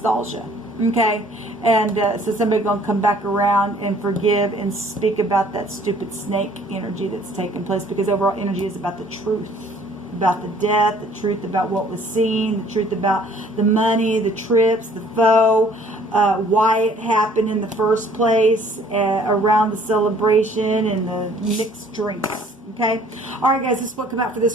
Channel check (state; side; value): normal; both; correlation 0.57